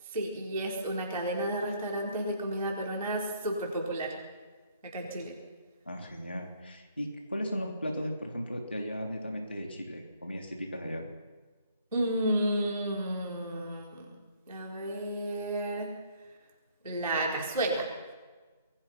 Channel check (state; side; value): inverted; both; correlation -0.63